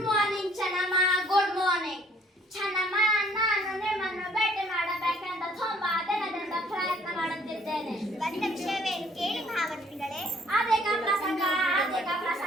morning Channamma. Good morning Channamma. ನಾನು ನಿಮ್ಮನ್ನು ಭೇಟಿ ಮಾಡಬೇಕೆಂದು ತುಂಬಾ ದಿನದಿಂದ ಪ್ರಯತ್ನ ಮಾಡುತ್ತಿದ್ದೇನೆ. ಬಂದ ವಿಷಯವೇನು ಕೇಳಿ ಮಹಾಮಂತ್ರಿಗಳೇ? ಅದೇಕ ಪ್ರಸಂಗ.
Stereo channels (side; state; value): both; normal; correlation 0.61